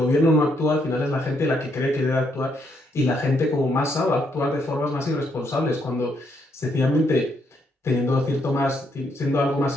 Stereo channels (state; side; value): normal; both; correlation 0.74